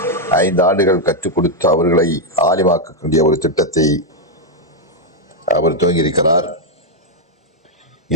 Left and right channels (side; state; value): both; normal; correlation 0.00